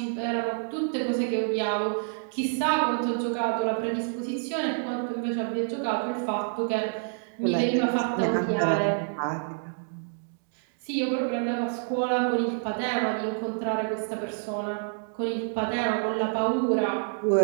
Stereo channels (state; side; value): silent; left; digital silence